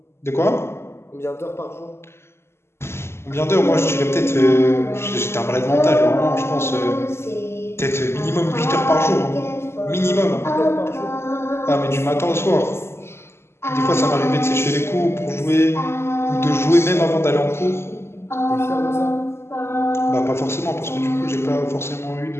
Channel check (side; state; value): right; late; 0.12 ms